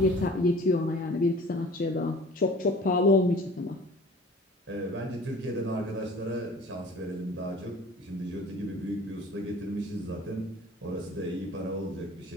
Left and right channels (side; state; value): both; normal; correlation 0.45